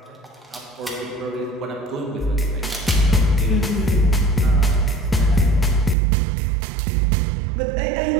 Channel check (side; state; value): left; drops out; at 6.0 s